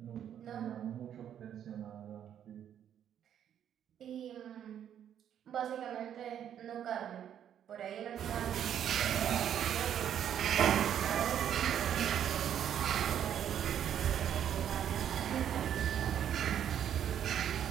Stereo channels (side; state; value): left; quieter; 9.7 dB